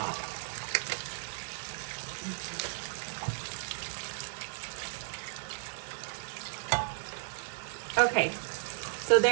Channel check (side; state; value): left; silent; digital silence